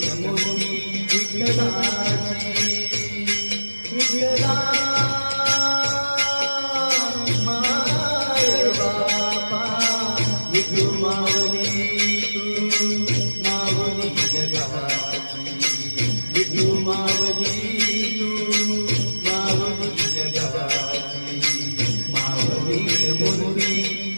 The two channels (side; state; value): both; inverted; correlation -1.00